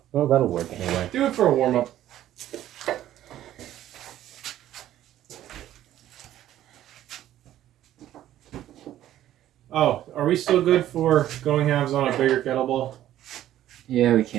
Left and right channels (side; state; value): left; quieter; 12.7 dB